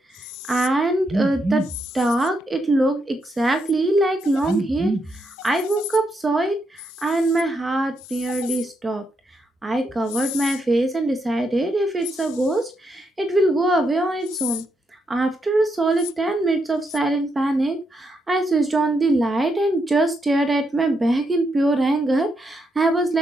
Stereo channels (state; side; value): normal; both; correlation 0.80